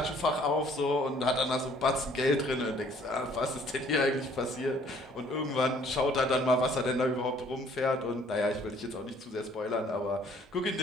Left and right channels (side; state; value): both; normal; correlation 0.59